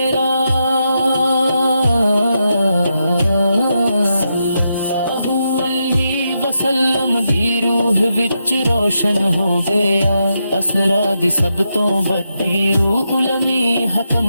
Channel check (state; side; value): inverted; both; correlation -0.84